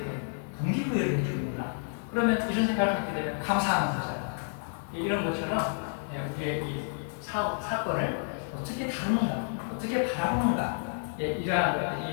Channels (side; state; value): right; silent; digital silence